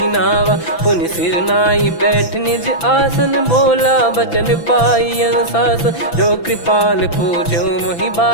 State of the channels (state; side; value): late; right; 6.0 ms